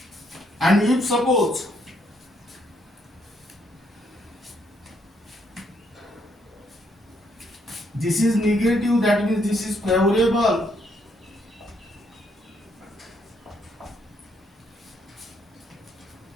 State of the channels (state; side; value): normal; both; correlation 0.72